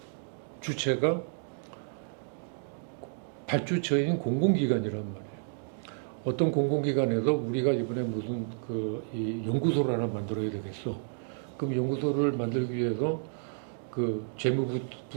주체가 발주처인 공공기관이란 말이에요. 어떤 공공기관에서 우리가 이번에 무슨 이 연구소를 하나 만들어야 되겠어. 그럼 연구소를 만들기 위해서 그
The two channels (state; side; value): silent; left; digital silence